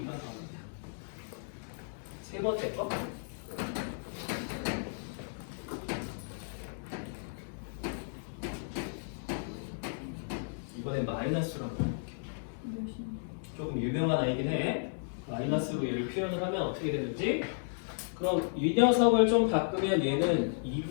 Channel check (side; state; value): right; silent; digital silence